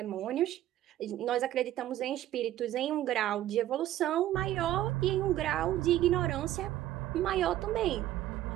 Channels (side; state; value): left; quieter; 13.5 dB